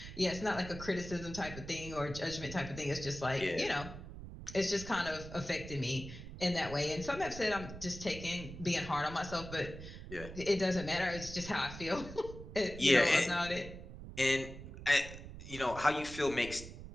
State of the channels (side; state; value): right; noise; rumble, 12 dB below the sound